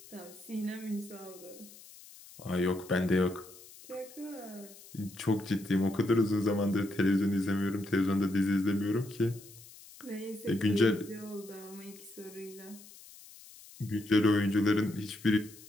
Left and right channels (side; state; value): left; noise; hiss, 20 dB below the sound